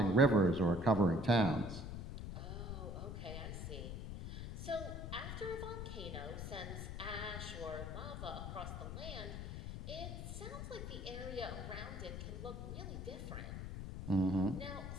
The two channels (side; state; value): left; noise; rumble, 6 dB below the sound